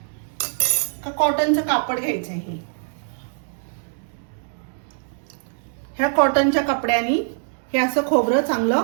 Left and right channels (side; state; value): left; silent; digital silence